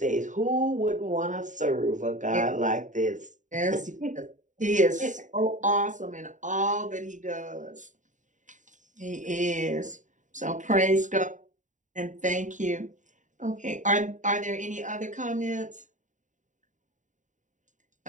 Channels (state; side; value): late; left; 0.36 ms